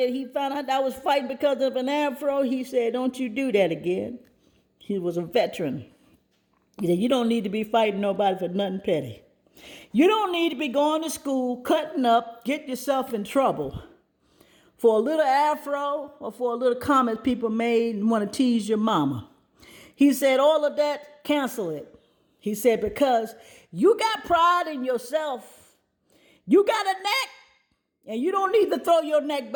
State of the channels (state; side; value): identical; both; correlation 1.00